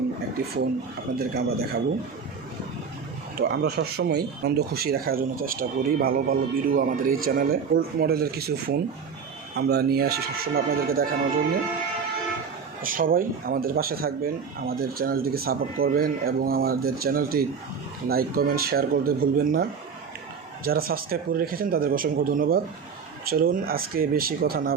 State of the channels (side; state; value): left; quieter; 6.0 dB